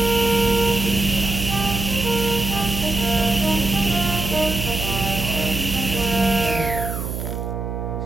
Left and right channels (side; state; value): right; noise; hum, 5 dB below the sound